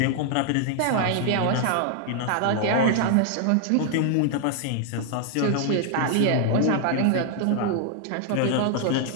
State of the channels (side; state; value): both; different; correlation 0.00